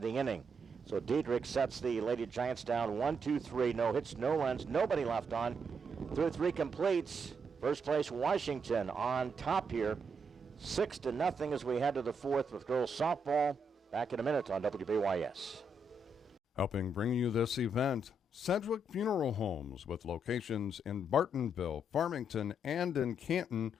the inning. So Diedrich sets the Lady Giants down 1-2-3. No hits, no runs, nobody left on. Through 3 completes. First place Washington on top here. 6-0 as we head to the 4th with girls softball. Back in a minute on WBYS. Helping bring you this event, Sedgwick Funeral Homes, with locations in Bartonville, Farmington, and in Canton.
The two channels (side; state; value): both; normal; correlation 0.78